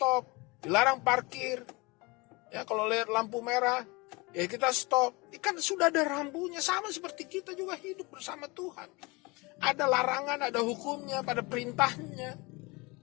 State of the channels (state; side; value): quieter; right; 25.5 dB